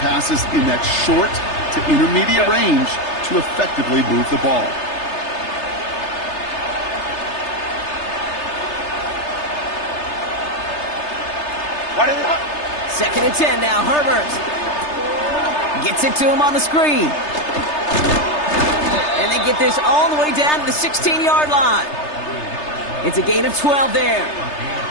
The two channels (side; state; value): right; late; 3.3 ms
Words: passes in that short to intermediate range to effectively move the ball. What is it? 2nd and 10 now. Herbert gets it to him on the screen. And they get this all the way down to the 16-yard line. It's a gain of 12 there.